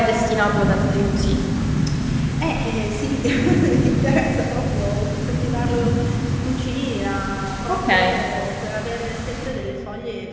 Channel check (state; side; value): identical; both; correlation 1.00